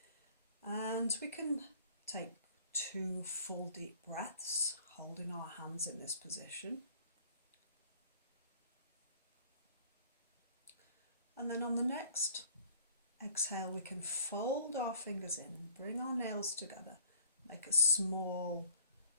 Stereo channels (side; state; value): both; inverted; correlation -0.53